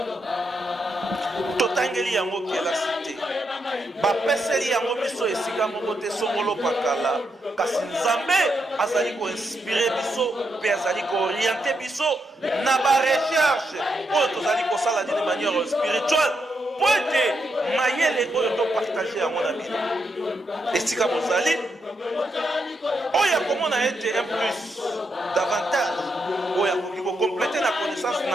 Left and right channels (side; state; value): both; normal; correlation 0.81